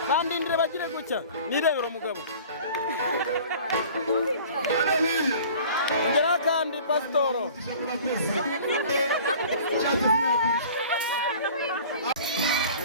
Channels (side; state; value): both; inverted; correlation -0.45